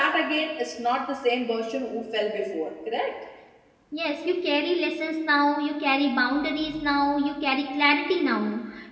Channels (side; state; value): both; identical; correlation 1.00